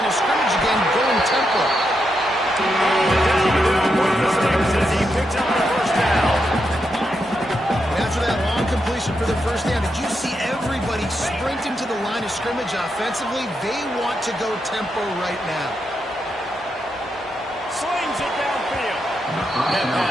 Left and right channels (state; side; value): normal; both; correlation 0.83